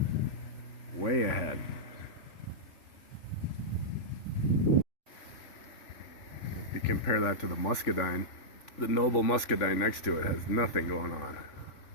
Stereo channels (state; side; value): late; right; 3.5 ms